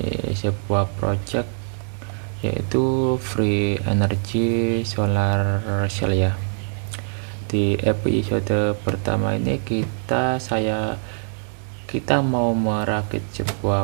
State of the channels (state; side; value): silent; left; digital silence